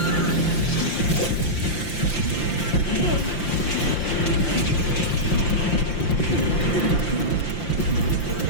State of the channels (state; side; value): late; right; 5.8 ms